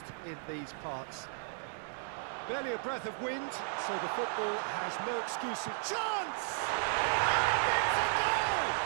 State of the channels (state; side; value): silent; left; digital silence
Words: in these parts. Barely a breath of wind, so the football has no excuses. Chance! And it's a goal!